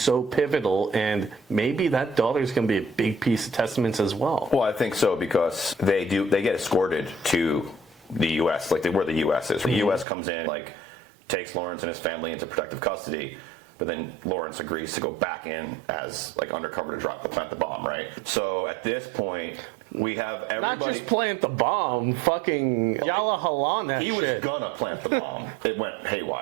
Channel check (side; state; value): left; drops out; at 10.1 s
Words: pivotal, and maybe that daughter is going to be a big piece of Testaments as well. Well, I think so, because they get escorted to the U.S., where the U.S. is. The U.S. comes in, takes Lawrence and his family into protective custody. but then Lawrence agrees to go back in as like undercover to plant the bomb, right? So at this point, we have everybody. Not just plant the bomb, fucking Yala Halan that He shit. was gonna plant the bomb. It went